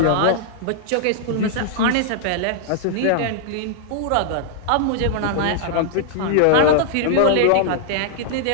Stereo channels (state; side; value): different; both; correlation -0.01